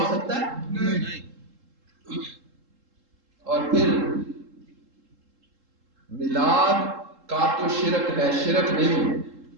سکتا ہے؟ نہیں. اور پھر میلاد کا تو شرک ہے، شرک نہیں.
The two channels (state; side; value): late; left; 3.7 ms